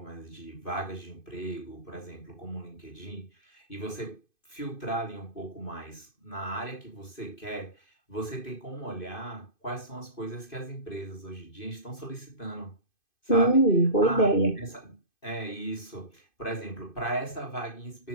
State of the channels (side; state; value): right; late; 2.5 ms